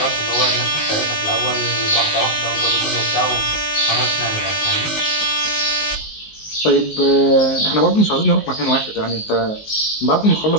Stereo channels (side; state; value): right; late; 19 ms